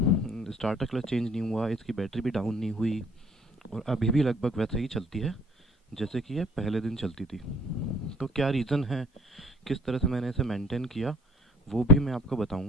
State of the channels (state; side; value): normal; both; correlation 0.56